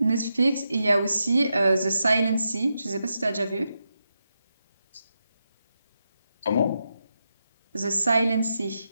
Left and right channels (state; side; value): inverted; both; correlation -0.86